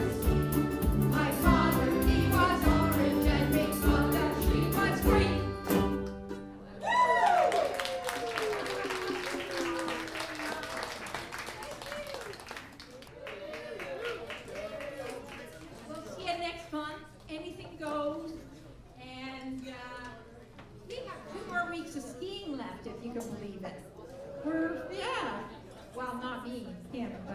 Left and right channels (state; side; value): identical; both; correlation 1.00